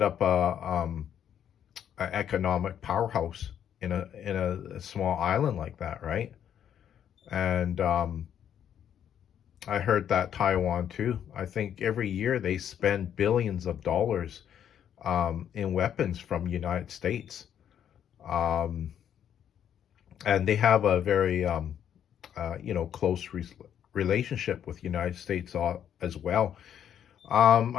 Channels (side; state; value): right; quieter; 9.4 dB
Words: up a economic powerhouse in a small island like that, right? And I heard that Taiwan too. I think every year they spend billions of dollars in weapons from United States, um, and they have a very close relationship with United States as well.